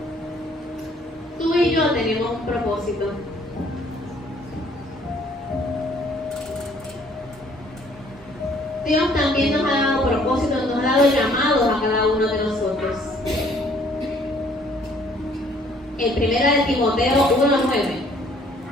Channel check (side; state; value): both; normal; correlation 0.60